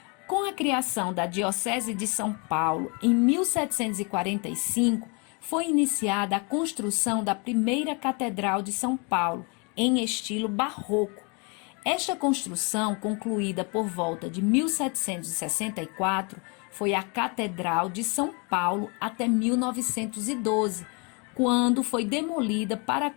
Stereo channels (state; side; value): quieter; right; 32.5 dB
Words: Com a criação da Diocese de São Paulo, em 1745, foi iniciada a construção da primeira Catedral de São Paulo, em estilo barroco. Esta construção, concluída por volta de 1764, foi a Catedral de São Paulo até 1912, quando foi demolida para a